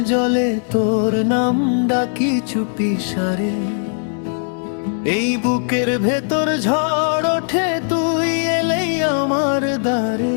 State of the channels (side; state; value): right; silent; digital silence